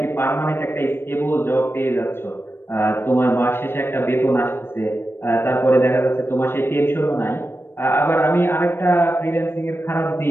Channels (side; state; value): right; late; 0.11 ms